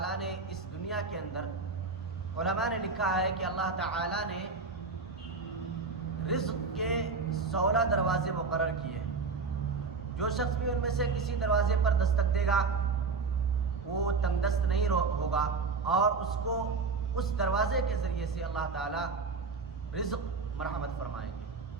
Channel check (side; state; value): left; quieter; 4.5 dB